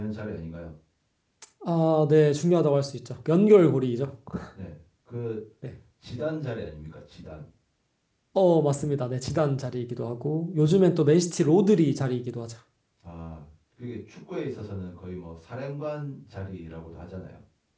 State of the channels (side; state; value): both; identical; correlation 1.00